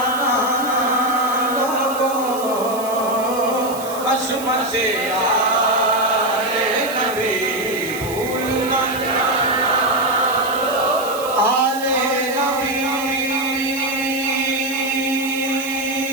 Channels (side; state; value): right; noise; hiss, 13 dB below the sound